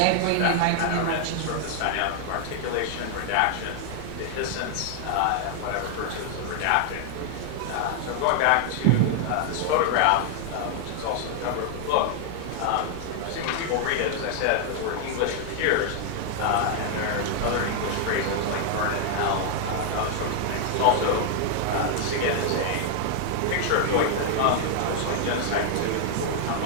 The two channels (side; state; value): both; different; correlation 0.00